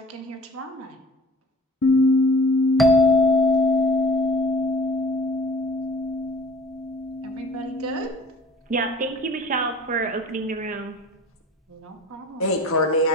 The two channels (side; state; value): both; normal; correlation 0.47